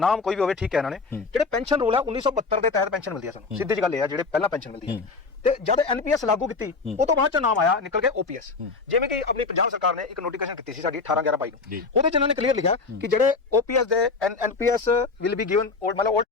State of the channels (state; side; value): quieter; right; 4.3 dB